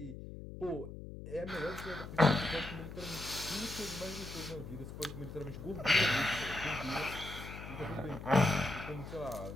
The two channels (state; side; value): noise; left; hum, 10 dB below the sound